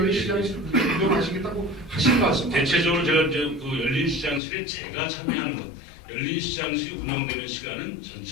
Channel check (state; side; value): drops out; right; at 4.4 s